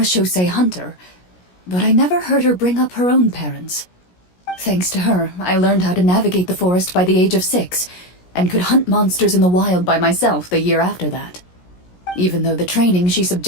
hunter, but I never heard her bring up her own parents. Thanks to her, I learned how to navigate the forest by the age of 6, and could hunt monsters in the wild by myself the year after that. Even though the training she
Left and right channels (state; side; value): late; right; 17 ms